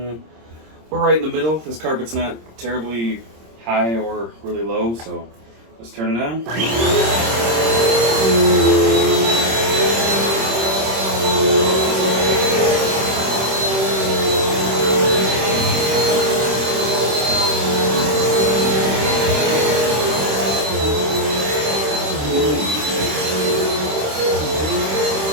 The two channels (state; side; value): late; left; 26 ms